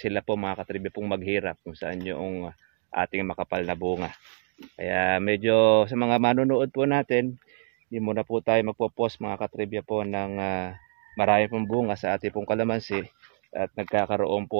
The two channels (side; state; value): left; silent; 60 dB below the other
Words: sila po mga katribya pong maghirap kung saan yung ating makapal na bunga. Kaya medyo sa mga manonood po natin, hindi muna po tayo magpo-post mga katribya po ng marami pong bunga sa ating pong kalamansi at nagkakaroon